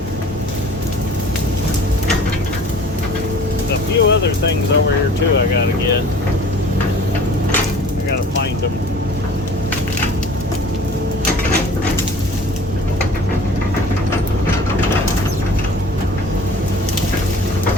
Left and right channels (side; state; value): both; normal; correlation 0.47